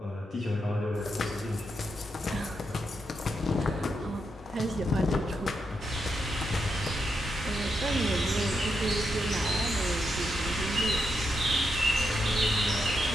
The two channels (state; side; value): normal; both; correlation 0.83